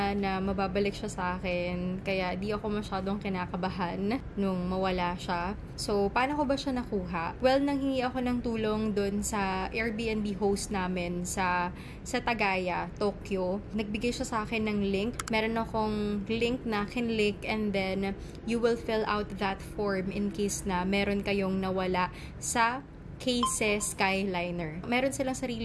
na mababalik siya sa akin. Kaya di ako masyadong kinakabahan nung mawala siya. So, paano ko ba siya nakuha? Well, nanghingi ako ng tulong dun sa Airbnb host namin sa Tagaya, Tokyo. Nagbigay siya sa akin ng link. Meron akong link na kinlink and then you will fill out that form in case na meron kayong nawala sa KSES Skyliner. Meron silang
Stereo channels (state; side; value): identical; both; correlation 1.00